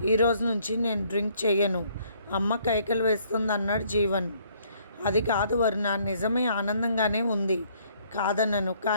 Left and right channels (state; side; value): inverted; both; correlation -0.64